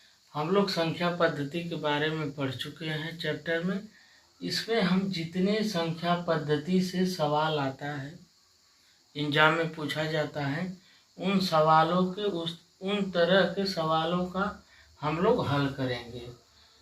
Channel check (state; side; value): identical; both; correlation 1.00